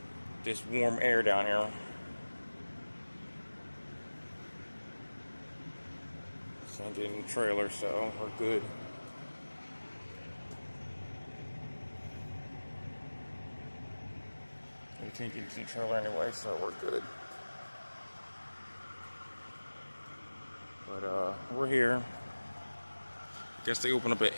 this warm air down here. Can't get in the trailer, so we're good. We can't get into the trailer anyway, so we're good. But we're here. Guess they open up at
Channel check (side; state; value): both; inverted; correlation -1.00